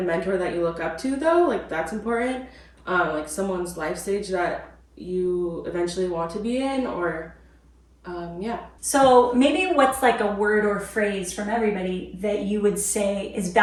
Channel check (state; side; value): identical; both; correlation 1.00